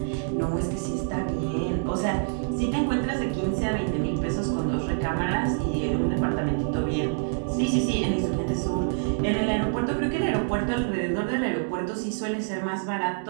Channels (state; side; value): silent; left; digital silence